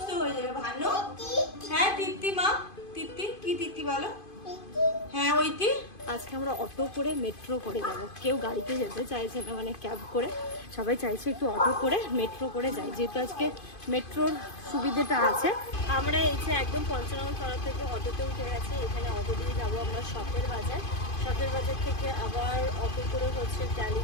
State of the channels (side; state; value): right; late; 2.5 ms